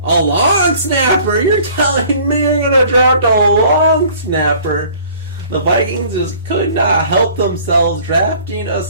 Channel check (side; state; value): both; inverted; correlation -0.52